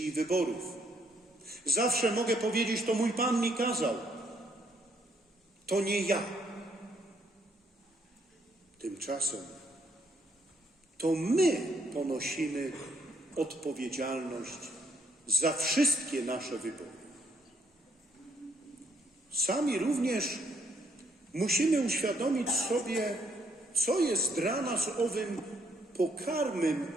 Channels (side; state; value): both; normal; correlation 0.70